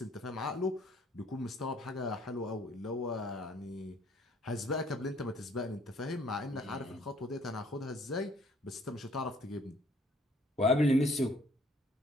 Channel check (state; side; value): normal; both; correlation 0.60